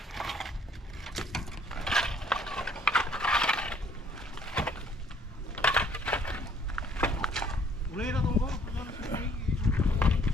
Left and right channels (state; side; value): normal; both; correlation 0.61